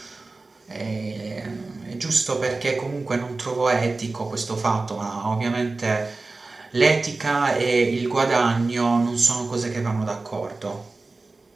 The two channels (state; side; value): quieter; left; 3.5 dB